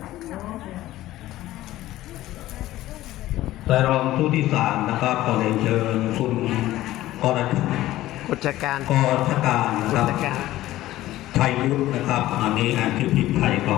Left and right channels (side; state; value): right; quieter; 15.4 dB